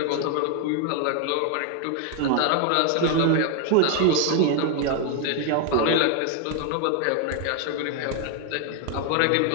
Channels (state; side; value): different; both; correlation 0.01